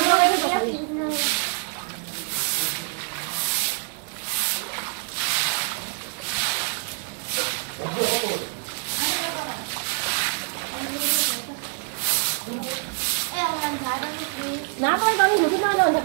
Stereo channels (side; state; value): left; quieter; 39.9 dB